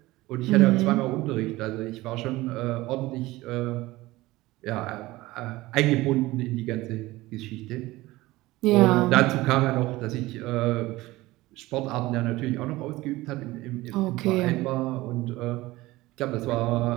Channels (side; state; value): left; quieter; 18.9 dB